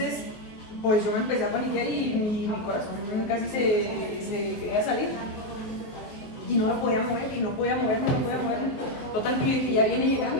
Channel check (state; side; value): late; right; 23 ms